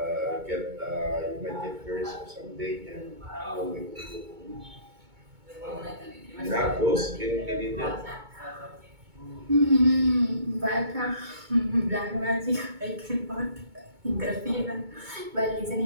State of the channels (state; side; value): late; left; 2.2 ms